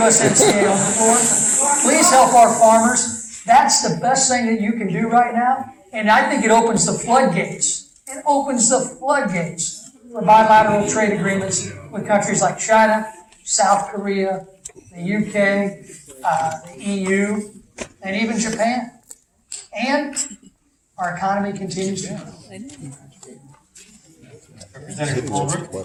on the floor. Please help our farmers. That's the best thing that you can do right now. And I think it opens the floodgates. It opens the floodgates for bilateral trade agreements with countries like China, South Korea, the UK, the EU, and even Japan. And our economy continues to grow. Representative Ulrich,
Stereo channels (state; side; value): identical; both; correlation 1.00